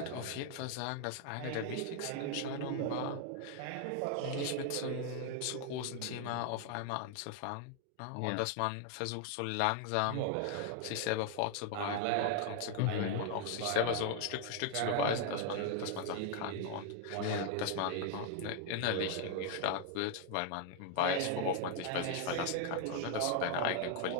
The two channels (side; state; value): both; different; correlation 0.00